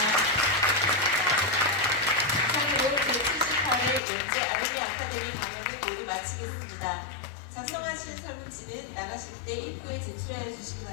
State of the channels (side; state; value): right; drops out; at 4.0 s